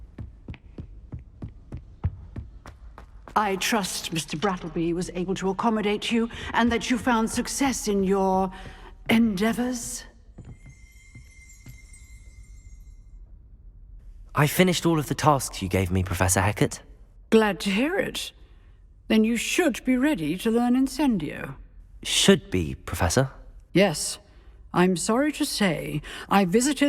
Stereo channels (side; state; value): both; identical; correlation 1.00